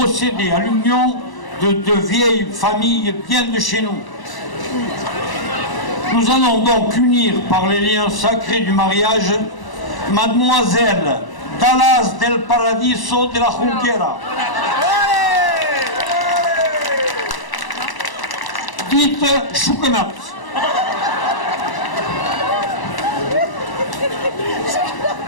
à l'union de deux vieilles familles bien de chez nous. Nous allons donc unir par les liens sacrés du mariage Mademoiselle Dallas del Paradiso de la Junquera, dite Choukenat,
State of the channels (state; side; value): late; right; 1.0 ms